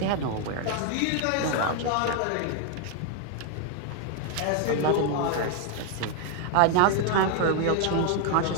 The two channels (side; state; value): both; different; correlation 0.00